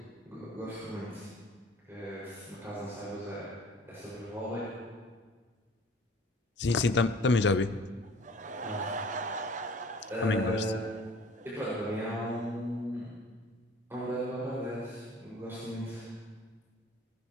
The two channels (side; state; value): both; normal; correlation 0.48